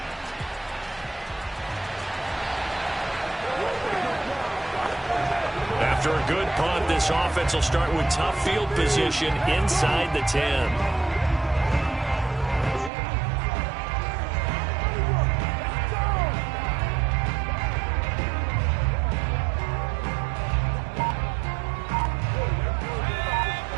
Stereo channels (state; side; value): drops out; left; at 12.9 s